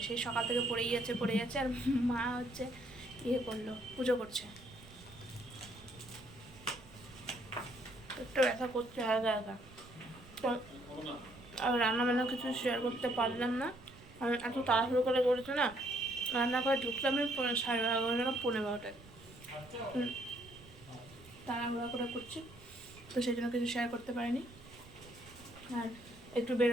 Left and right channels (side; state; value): right; noise; rumble, 21 dB below the sound